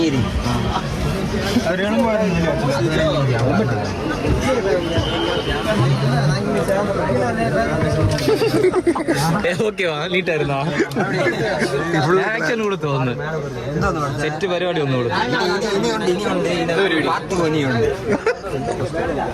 ഓക്കെ നീട്ടായിരുന്നോ? ആക്ഷൻ കൂടെ തോന്നുന്നു. സെറ്റ് പരിപാടി ഒന്നും കൊടുത്തു.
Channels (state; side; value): identical; both; correlation 1.00